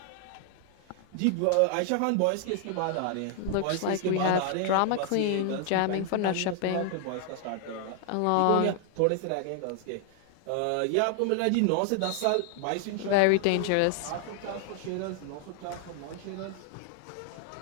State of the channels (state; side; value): different; both; correlation 0.00